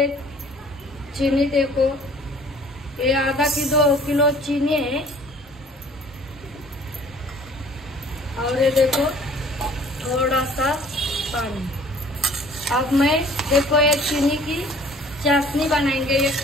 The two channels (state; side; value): normal; both; correlation 0.53